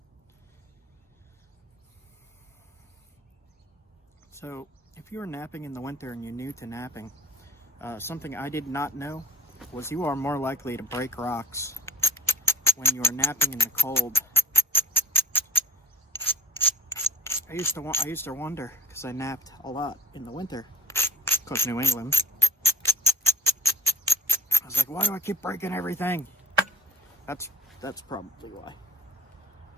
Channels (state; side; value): normal; both; correlation 0.51